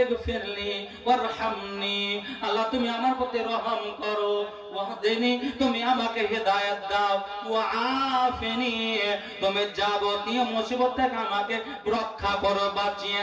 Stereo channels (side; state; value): both; identical; correlation 1.00